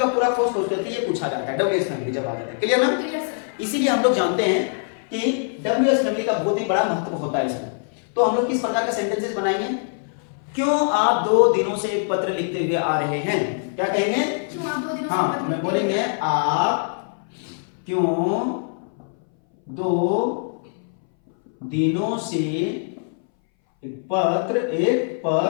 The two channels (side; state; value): right; silent; 61 dB below the other